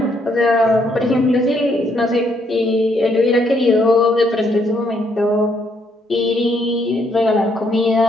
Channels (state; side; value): normal; both; correlation 0.72